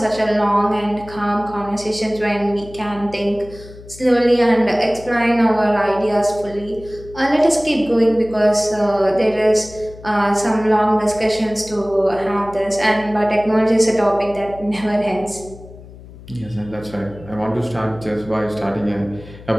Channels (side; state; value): left; noise; hum, 18 dB below the sound